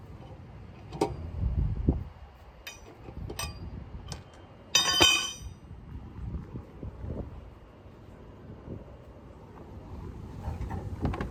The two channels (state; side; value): identical; both; correlation 1.00